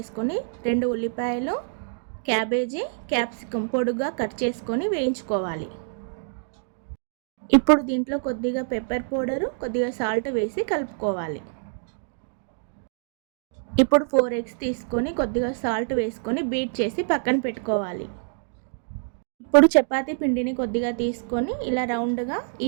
2 ఉల్లిపాయలు, క్యాబేజీ, క్యాప్సికమ్ పొడుగా కట్ చేసుకొని వేయించుకోవాలి. ఇప్పుడు దీంట్లో కొద్దిగా పెప్పర్ పౌడరు, కొద్దిగా సాల్ట్ వేసి కలుపుకోవాలి. ఇప్పుడు 4 ఎగ్స్ తీసుకొని కొద్దిగా సాల్ట్ వేసుకొని బీట్ చేసి పక్కన పెట్టుకోవాలి. ఇప్పుడు చపాతీ పిండిని కొద్దిగా తీసుకొని ఇలా రౌండ్గా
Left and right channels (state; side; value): silent; left; digital silence